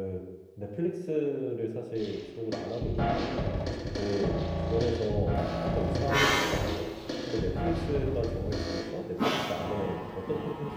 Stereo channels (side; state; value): both; identical; correlation 1.00